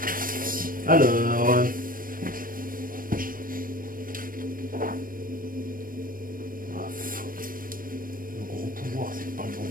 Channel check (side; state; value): left; late; 0.41 ms